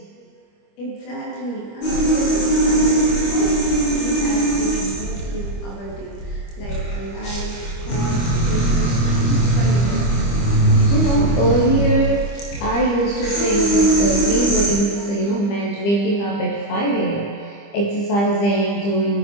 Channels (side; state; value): right; late; 25 ms